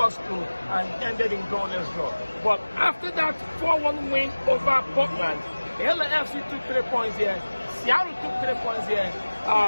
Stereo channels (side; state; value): both; inverted; correlation -1.00